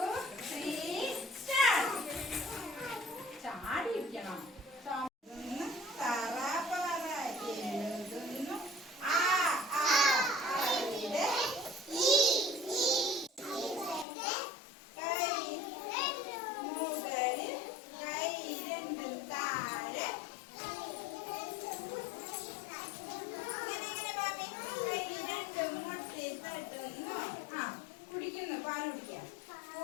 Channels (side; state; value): right; drops out; at 14.1 s